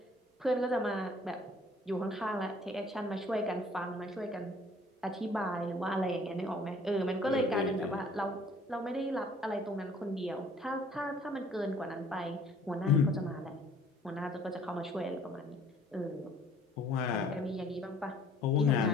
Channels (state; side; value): normal; both; correlation 0.56